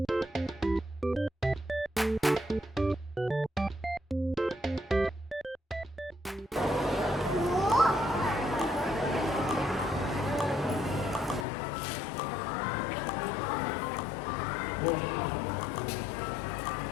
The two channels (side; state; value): right; drops out; at 11.5 s